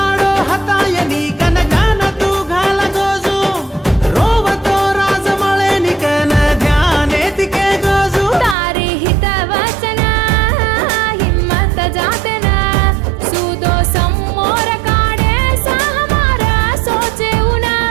हतायनी कनकान तू घाल गोजू रोवतो राजमळे निकन ध्याने तिके गोजू तारी हित वचन हिम्मत जाते ना सुदो सम्मोर काढे सहमारा सोचे उना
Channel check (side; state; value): left; drops out; at 8.6 s